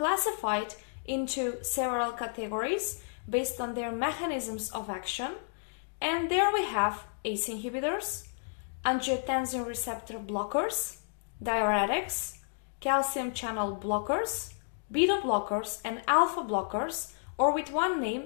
into several categories based on their mechanisms of action, and there we have ACE inhibitors, angiotensin receptor blockers, diuretics, calcium channel blockers, beta blockers, and alpha blockers, or with one name,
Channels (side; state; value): right; silent; digital silence